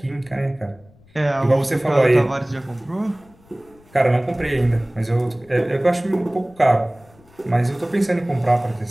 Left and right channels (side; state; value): left; noise; rumble, 28 dB below the sound